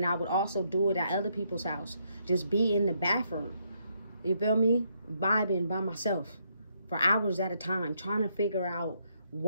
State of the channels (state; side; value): inverted; both; correlation -0.74